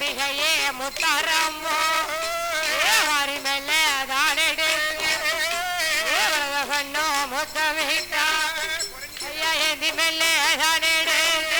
முத்தாரம்மோ, ஹரி மேல தானெடு கண்ணோ முத்தமிட்டா, ஐயா ஏந்தி மேல தானெடு,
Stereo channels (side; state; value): both; identical; correlation 1.00